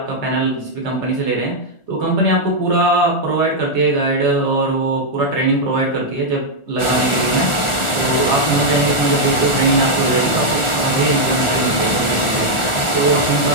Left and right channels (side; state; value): right; late; 1.4 ms